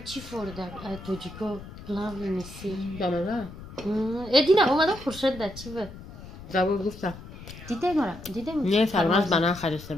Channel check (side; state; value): left; noise; rumble, 15 dB below the sound